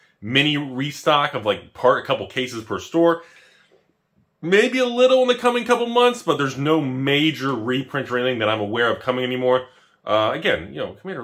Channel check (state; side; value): identical; both; correlation 1.00